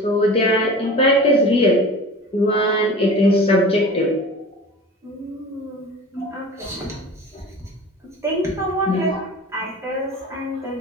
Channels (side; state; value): both; normal; correlation 0.37